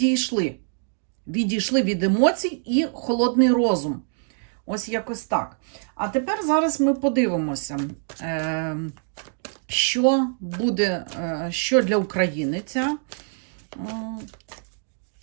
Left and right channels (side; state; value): left; silent; digital silence